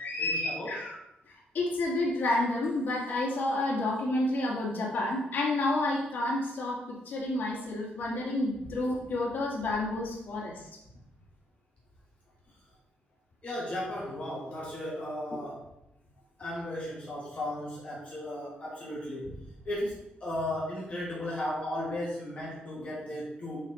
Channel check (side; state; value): both; normal; correlation 0.71